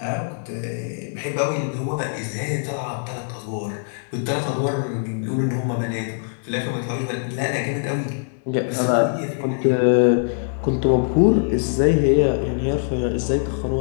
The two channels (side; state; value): right; silent; digital silence